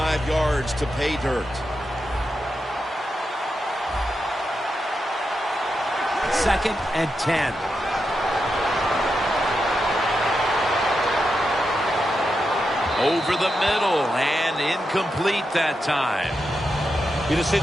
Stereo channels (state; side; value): normal; both; correlation 0.87